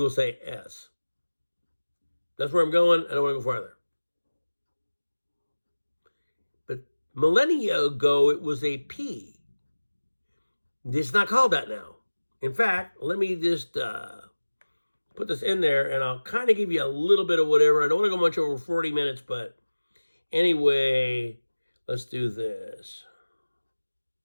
say S. That's where I'm going. I don't want to go farther. But millennia ago, it was a P. It's not called that now. In fact, let me just put this in there, and I'll kind of give you a little bit of whatever. I don't want to go much over 40 minutes, but anyway, let's do this.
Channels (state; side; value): inverted; both; correlation -1.00